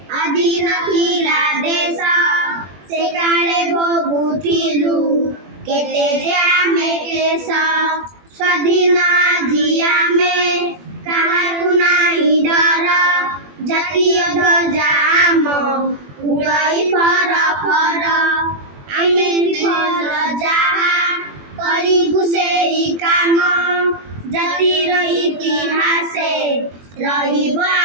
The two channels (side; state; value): left; late; 21 ms